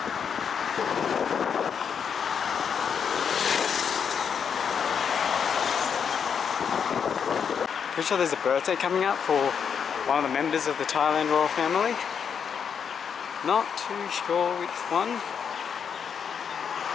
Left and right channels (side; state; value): right; quieter; 7.1 dB